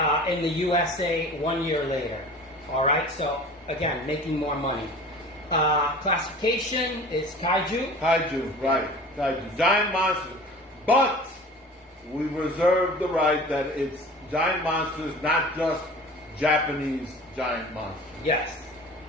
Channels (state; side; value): normal; both; correlation 0.40